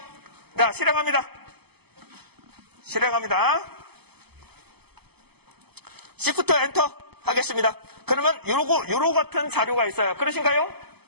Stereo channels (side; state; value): left; late; 0.97 ms